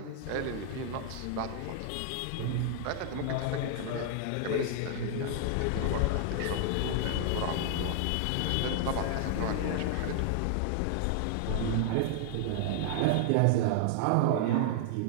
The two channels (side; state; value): both; different; correlation -0.01